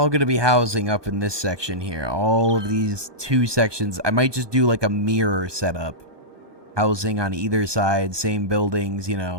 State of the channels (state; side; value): late; left; 1.2 ms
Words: going to be housing up in this section here. All of these two sections. I might just do like a mirror setup. Housing on either side, same buildings, you